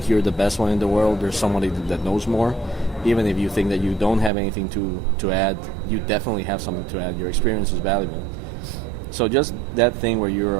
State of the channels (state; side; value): drops out; left; at 4.3 s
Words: you're the best one in the world, there's somebody that knows more. Even if you think that you don't have anything to add, you definitely have something to add. Your experience is valuable. So just that thing where you